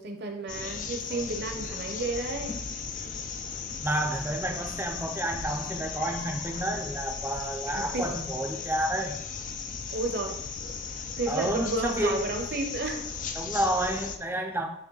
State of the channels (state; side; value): normal; both; correlation 0.44